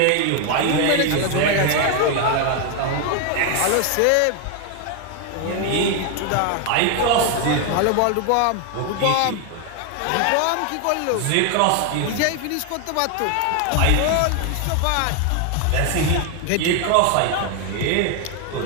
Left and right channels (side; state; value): both; different; correlation 0.01